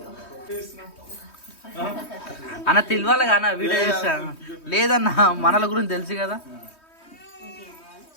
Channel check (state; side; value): late; right; 3.2 ms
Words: అన్న తెలియాలి కానీ వీడియో చేస్తాను లేదన్నా, మనల గురించి తెలుసు కదా.